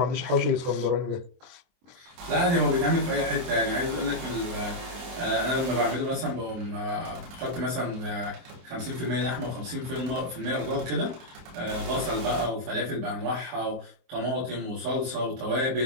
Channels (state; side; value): late; left; 23 ms